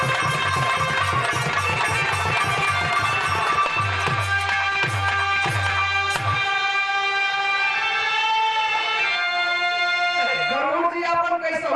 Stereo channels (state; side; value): identical; both; correlation 1.00